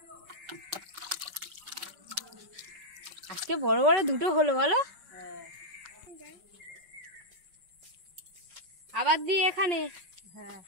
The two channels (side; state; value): left; late; 5.3 ms